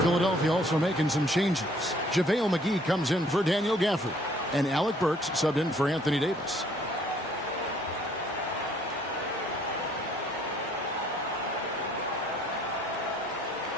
Philadelphia also making some changes. JaVale McGee comes in for Daniel Gafford. And Alec Burks subbed in for Anthony Davis.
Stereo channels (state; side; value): normal; both; correlation 0.61